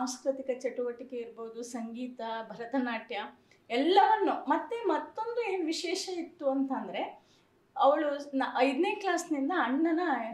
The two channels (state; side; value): identical; both; correlation 1.00